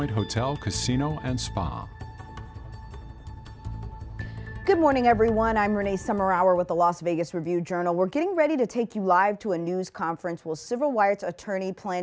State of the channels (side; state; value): both; identical; correlation 1.00